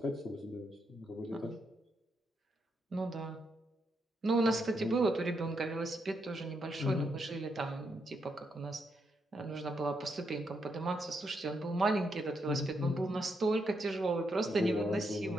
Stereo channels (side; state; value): both; normal; correlation 0.80